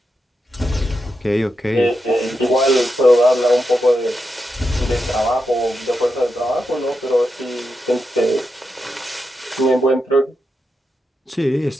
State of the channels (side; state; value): both; normal; correlation 0.87